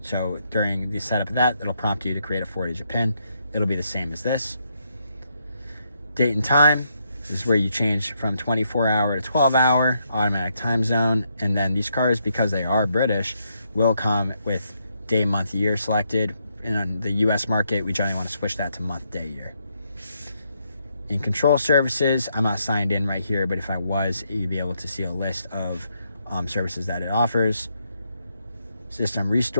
So during the setup of that, it'll prompt you to create a 4-digit PIN. It'll be the same as this. Date and time. This is where you change from 24-hour to 12-hour, automatic time zone. And then these cars, because they are British, will come with day, month, year selected. And on the US market, we generally want to switch that to month, day, year. In Control services, I'm not signed in right here, but if I was, you'd be able to see a list of services that it offers. System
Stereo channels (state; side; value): inverted; both; correlation -0.77